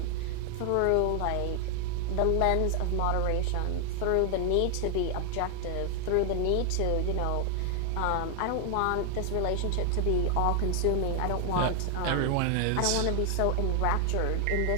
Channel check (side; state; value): both; different; correlation 0.00